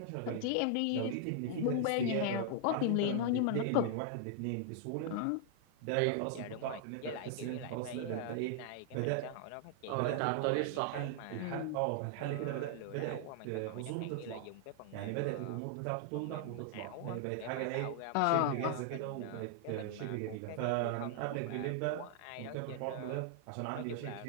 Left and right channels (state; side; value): different; both; correlation 0.00